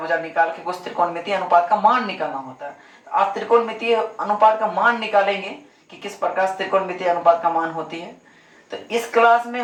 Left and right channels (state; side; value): identical; both; correlation 1.00